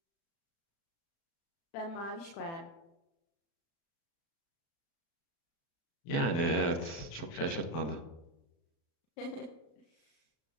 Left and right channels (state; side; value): late; right; 36 ms